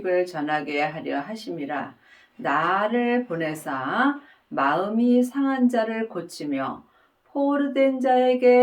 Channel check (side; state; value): both; identical; correlation 1.00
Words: 전하게 하려 하심이라. 나를 보내사 마음이 상한 자를 고치며 포로된